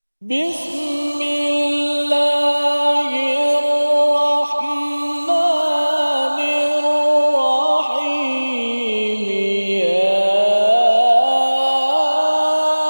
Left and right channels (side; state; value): both; inverted; correlation -1.00